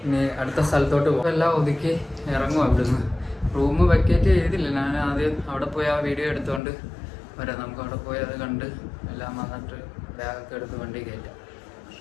ഇനി അടുത്ത സ്ഥലത്തോട്ട് പോകും. എല്ലാം ഒതുക്കി ഇറങ്ങും. ഇവിടുന്ന് റൂം വെക്കേറ്റ് ചെയ്തില്ല, ഞാൻ ആദ്യം അവിടെ പോയി ആ വീഡിയോ എടുത്തുകൊണ്ട് വരാം. നമുക്ക് അവിടെ പോയി അത് കണ്ട് എല്ലാം വന്നിട്ട് ബാഗൊക്കെ എടുത്ത് വണ്ടി കയറ്റാം.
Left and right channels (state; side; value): drops out; right; at 6.6 s